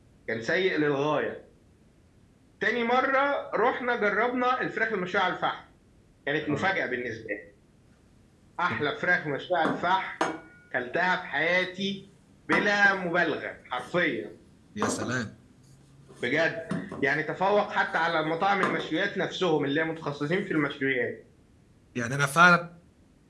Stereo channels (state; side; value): identical; both; correlation 1.00